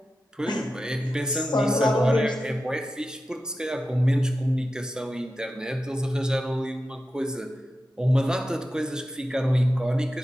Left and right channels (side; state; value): both; normal; correlation 0.91